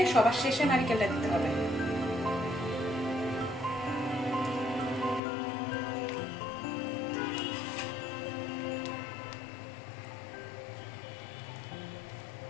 সবার শেষে নারিকেলটা দিতে হবে।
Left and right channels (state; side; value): drops out; right; at 5.2 s